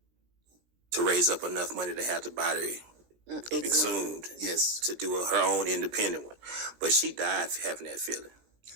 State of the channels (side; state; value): left; late; 17 ms